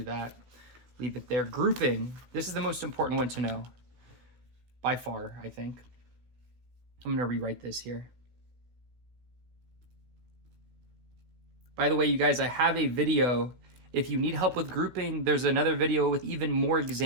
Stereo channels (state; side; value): late; left; 16 ms